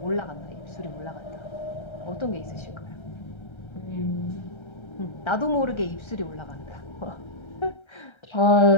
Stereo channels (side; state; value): right; late; 1.3 ms